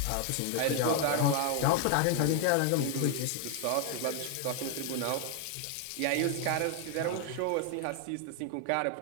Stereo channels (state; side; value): different; both; correlation 0.00